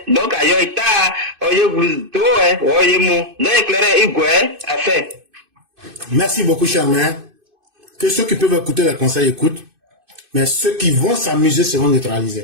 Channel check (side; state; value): left; late; 2.6 ms